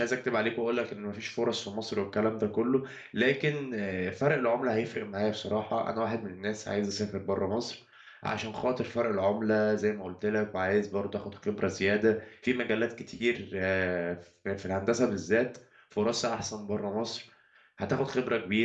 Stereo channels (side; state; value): both; identical; correlation 1.00